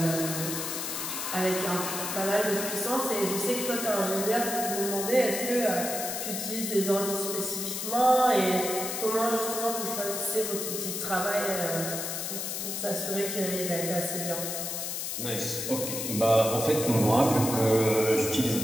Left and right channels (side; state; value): left; noise; hiss, 4 dB below the sound